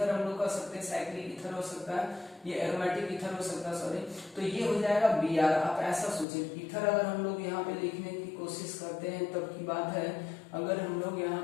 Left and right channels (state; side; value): drops out; right; at 6.2 s